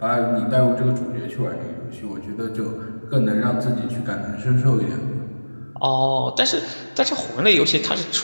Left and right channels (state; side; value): inverted; both; correlation -1.00